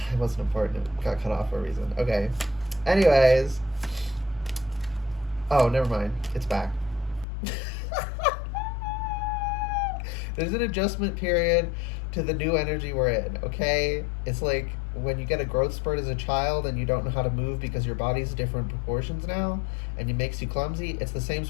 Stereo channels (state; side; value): drops out; right; at 7.2 s